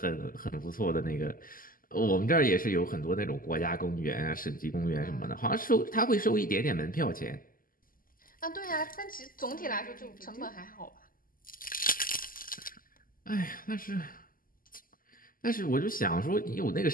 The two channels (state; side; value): late; right; 0.41 ms